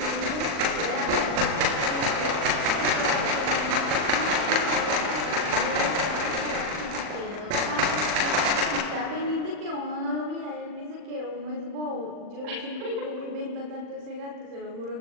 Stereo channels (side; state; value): left; late; 40 ms